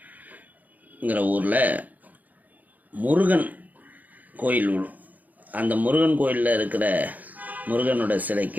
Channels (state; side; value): late; left; 0.080 ms